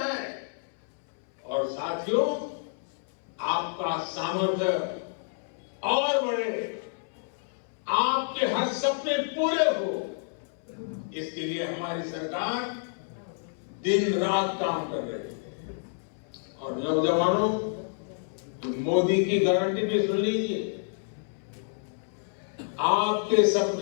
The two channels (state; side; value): silent; right; 59 dB below the other